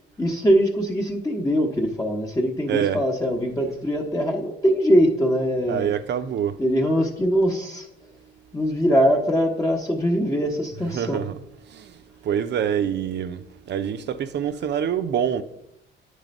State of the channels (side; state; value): both; normal; correlation 0.70